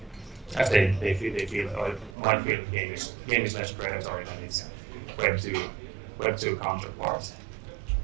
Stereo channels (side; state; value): left; drops out; at 2.1 s